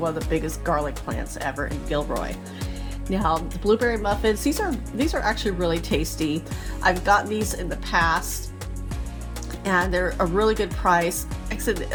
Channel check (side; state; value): both; identical; correlation 1.00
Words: of the biggest garlic plants ever in Gilroy. Now the blueberry muffins, these are actually really tasty. I've gotten these in the past and they're a really good price. Like I said, it